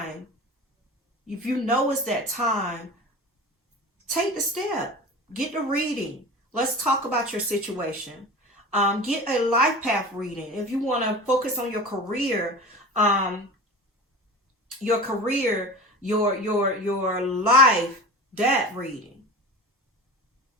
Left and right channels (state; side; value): normal; both; correlation 0.34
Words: take the step. Get the reading. Let's talk about your situation. Get a life path reading. If you want to focus on your career, your life, that reading.